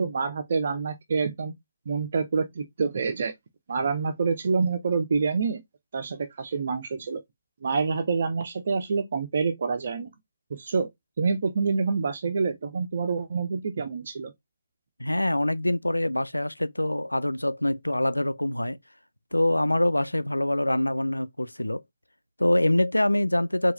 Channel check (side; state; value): both; inverted; correlation -0.91